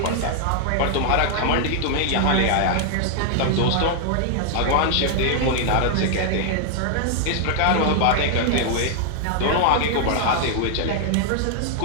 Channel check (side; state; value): both; different; correlation 0.00